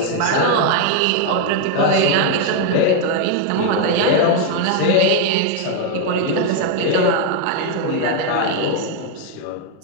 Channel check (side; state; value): both; different; correlation 0.00